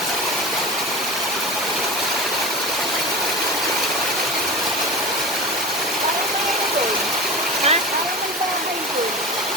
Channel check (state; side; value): normal; both; correlation 0.30